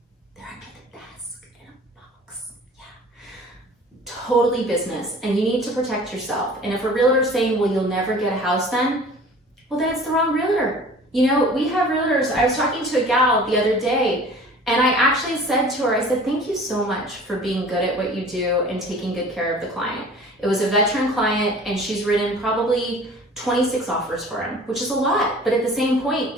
They're under the desk in a box, yeah. Totally business, and you need to protect yourself. And if a realtor's saying, well, you'll never get a house then, well, then it's the wrong realtor. You know, we have realtors. I was talking to a gal the other day, and I actually said to her, I said, thank you so much for being good at what you do and taking good care of the client. It was a veteran client, and she's written probably 26 offers for him, which is a lot. But at the same point,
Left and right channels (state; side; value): normal; both; correlation 0.45